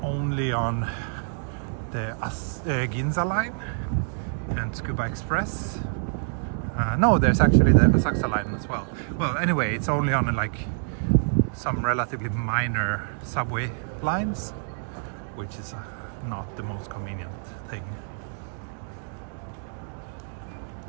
only on the Ginza line and Tsukuba Express. No, there's actually the Asakusa line as well. Well, anyway, it's only on like some relatively minor subway lines, which is not the most convenient thing.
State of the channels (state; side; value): silent; left; digital silence